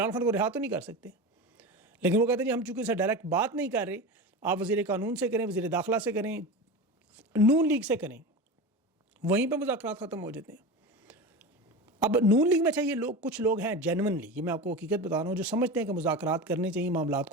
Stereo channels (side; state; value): both; normal; correlation 0.26